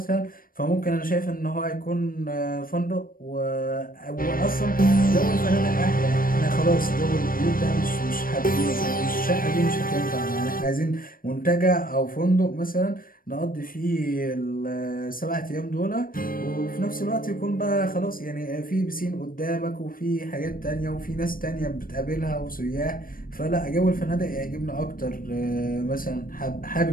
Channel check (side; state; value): right; late; 0.41 ms